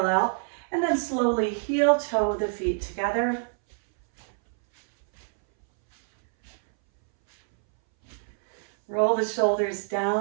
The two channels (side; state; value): left; silent; 61 dB below the other